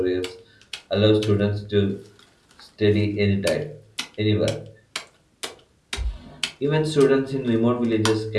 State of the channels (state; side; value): identical; both; correlation 1.00